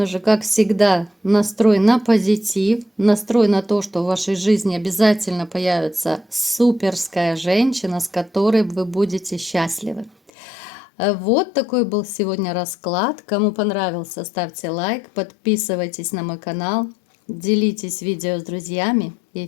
же, как всегда, настрой на позитив, настрой на то, что в вашей жизни обязательно появится суперская женщина, с которой вы будете счастливы. Вот такой был сегодня расклад. Кому понравился, ставьте лайк, подписывайтесь на мой канал, делитесь видео с друзьями и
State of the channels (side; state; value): right; drops out; at 10.3 s